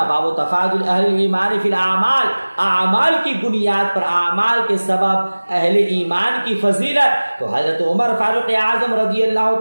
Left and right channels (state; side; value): inverted; both; correlation -1.00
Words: باب و تفاضل اہل ایمان فی الاعمال، اعمال کی بنیاد پر، اعمال کے سبب اہل ایمان کی فضیلت۔ تو حضرت عمر فاروق اعظم رضی اللہ